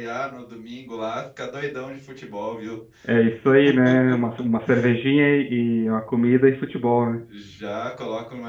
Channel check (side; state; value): both; identical; correlation 1.00